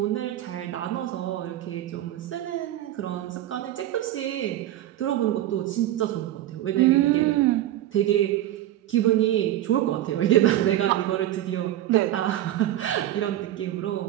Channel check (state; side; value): quieter; left; 13.4 dB